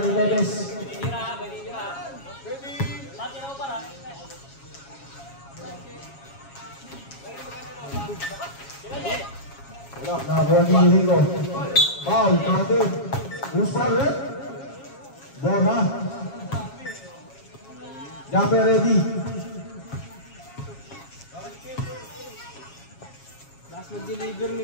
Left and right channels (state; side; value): late; right; 7.3 ms